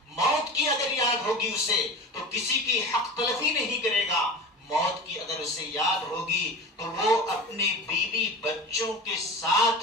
موت کی اگر یاد ہوگی اسے تو کسی کی حق تلفی نہیں کرے گا، موت کی اگر اسے یاد ہوگی تو وہ اپنے بیوی بچوں کے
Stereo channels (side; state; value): both; normal; correlation 0.32